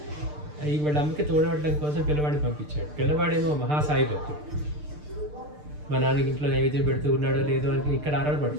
వాళ్ళ అమ్మకి తోడవడం కోసం పిల్లవాడిని పంపించాడు. పిల్లవాడేమో మహాసాయి భక్తుడు, మా నాన్నకి ఇంట్లో నైవేద్యం పెడుతూ ఉన్నాడో లేదో అని ఇక్కడ ఆరాలు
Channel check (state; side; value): late; left; 6.7 ms